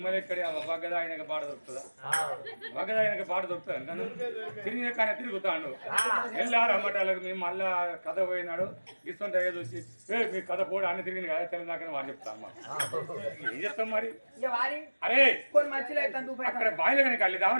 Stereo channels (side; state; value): both; inverted; correlation -1.00